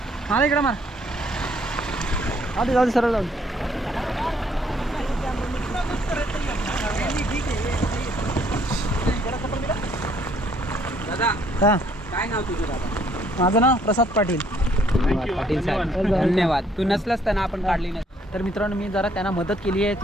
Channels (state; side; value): normal; both; correlation 0.65